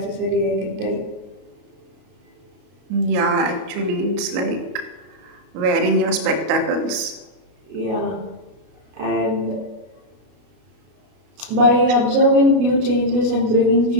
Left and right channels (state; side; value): late; left; 33 ms